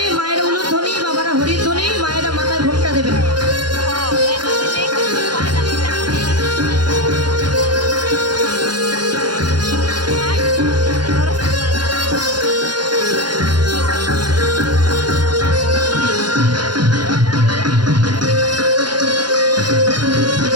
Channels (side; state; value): left; late; 0.71 ms